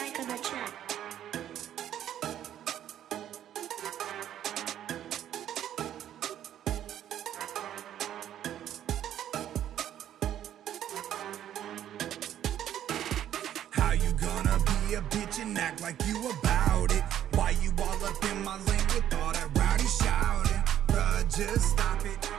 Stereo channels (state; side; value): quieter; left; 11.1 dB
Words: on the track. How you gonna be a bitch and act like you about it? Why you all up in my lane with all that rowdy shouting? Bruh, just stop it.